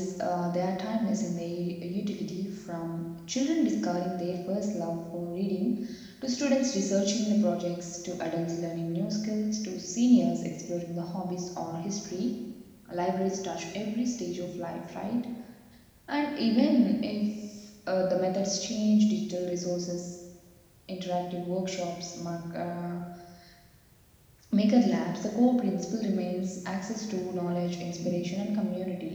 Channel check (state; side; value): identical; both; correlation 1.00